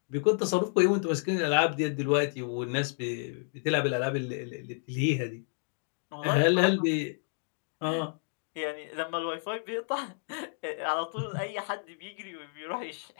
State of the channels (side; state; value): right; silent; 57 dB below the other